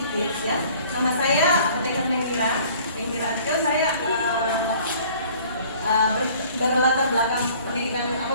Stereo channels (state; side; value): inverted; both; correlation -0.53